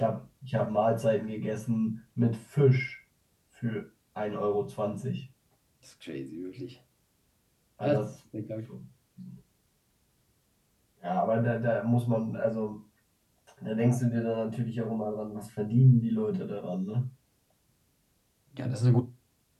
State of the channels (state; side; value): identical; both; correlation 1.00